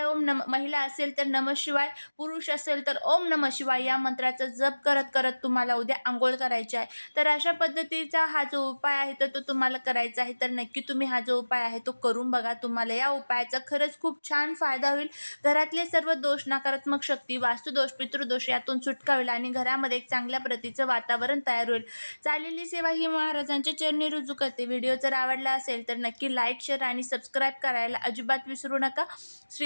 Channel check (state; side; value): inverted; both; correlation -1.00